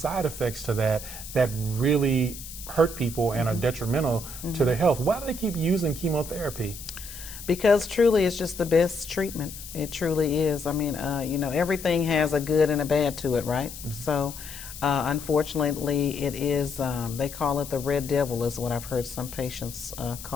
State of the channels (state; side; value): noise; left; hiss, 12 dB below the sound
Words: effects to that that really hurt people and are detrimental to their health. Why do they keep using chemotherapy? Because truly it's just the best treatment. It truly is. I mean, everything has a good and a bad to it, right? So unfortunately it is, they call it the red devil is what I've heard some patients